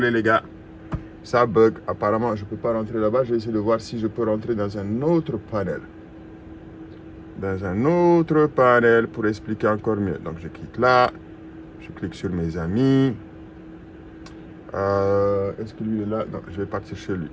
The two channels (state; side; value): identical; both; correlation 1.00